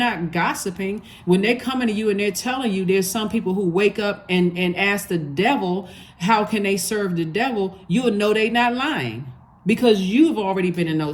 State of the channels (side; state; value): both; identical; correlation 1.00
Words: gossiping. When they're coming to you and they're telling you, there's some people who wake up and ask the devil, how can they serve the devil? You'll know they're not lying, because you've already been in